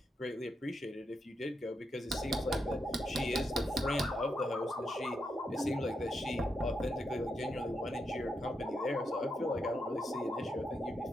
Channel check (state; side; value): normal; both; correlation 0.83